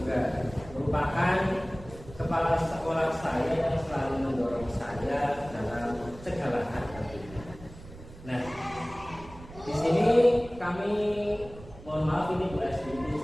merupakan kepala sekolah saya yang selalu mendorong saya dalam segala hal. Nah, di sini kami mohon maaf ini Bu SD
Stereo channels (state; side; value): noise; right; rumble, 17 dB below the sound